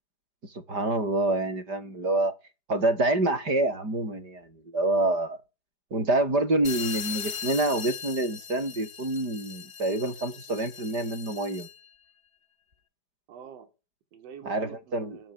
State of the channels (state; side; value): late; left; 4.7 ms